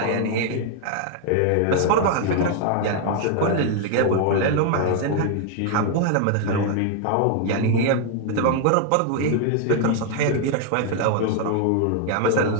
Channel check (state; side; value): different; both; correlation 0.00